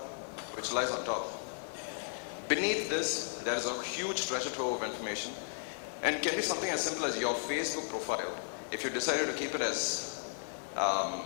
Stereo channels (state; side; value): silent; right; 55 dB below the other